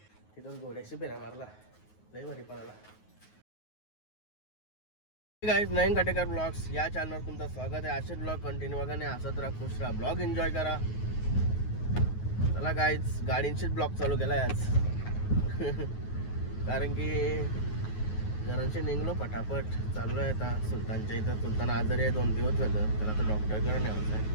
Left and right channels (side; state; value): right; late; 9.4 ms